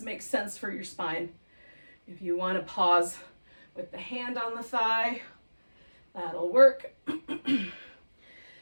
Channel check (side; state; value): both; inverted; correlation -1.00